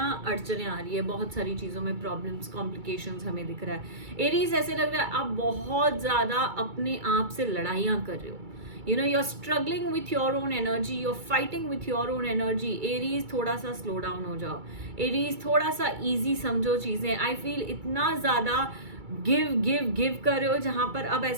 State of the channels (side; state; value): left; late; 2.3 ms